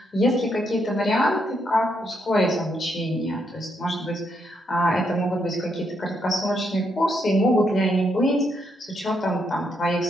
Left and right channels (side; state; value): both; normal; correlation 0.77